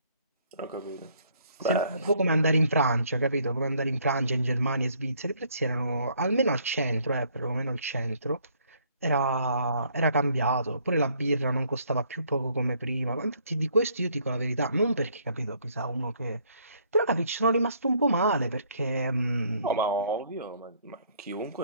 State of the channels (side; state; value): both; inverted; correlation -0.64